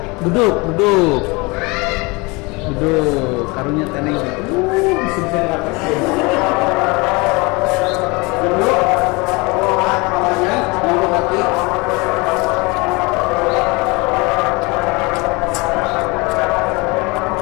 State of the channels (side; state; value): right; quieter; 26.3 dB